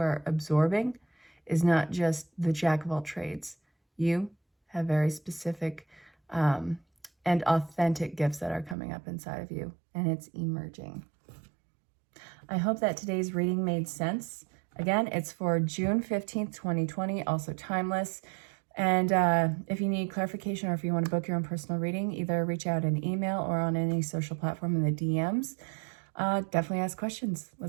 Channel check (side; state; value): left; drops out; at 8.8 s